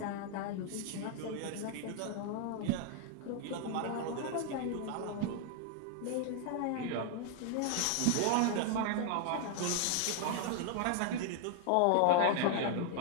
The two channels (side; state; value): both; different; correlation 0.00